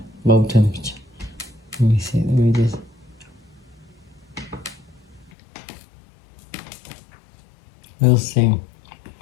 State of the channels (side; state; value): right; drops out; at 5.3 s